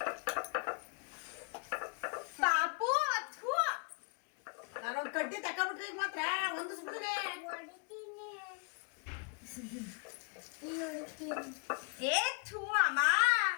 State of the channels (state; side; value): quieter; right; 36.4 dB